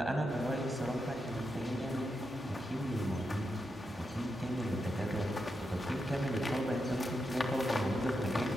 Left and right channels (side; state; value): both; normal; correlation 0.85